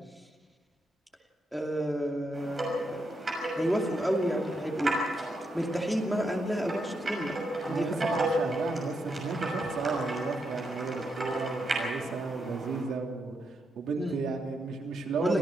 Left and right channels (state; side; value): normal; both; correlation 0.82